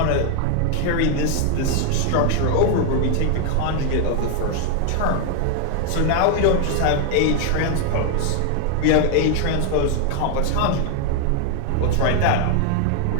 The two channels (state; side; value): different; both; correlation 0.00